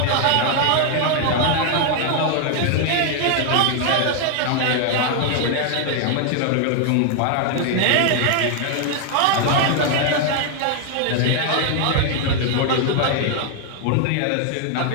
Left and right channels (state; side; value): different; both; correlation 0.00